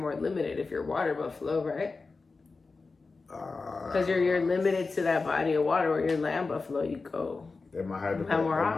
limited if you're water buffalo, right? Because you're limited to that body of water. Or you're land buffalo, you go. They might have to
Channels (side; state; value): right; quieter; 4.1 dB